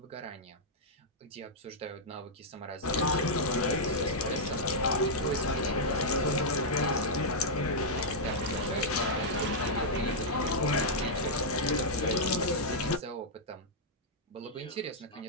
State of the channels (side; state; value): both; normal; correlation -0.06